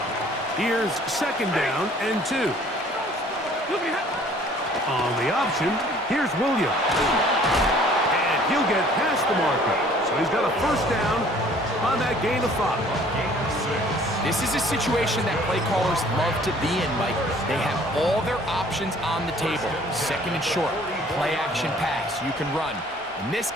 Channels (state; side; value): normal; both; correlation 0.55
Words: Here's second down and 2. On the option, here's Williams. And he'll get past the marker. So he's got a first down on that gain of 5. This is a situation that play callers love to be in, Mike. They have all their options on the table. Second and short, play action pass, you can run. In this